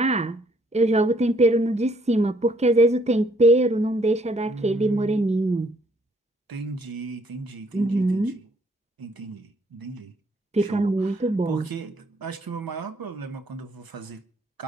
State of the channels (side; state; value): both; normal; correlation 0.66